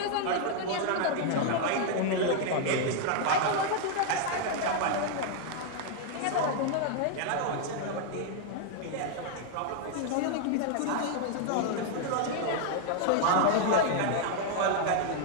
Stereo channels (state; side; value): different; both; correlation 0.00